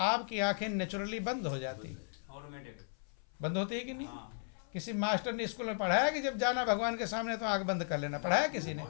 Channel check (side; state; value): right; silent; 54 dB below the other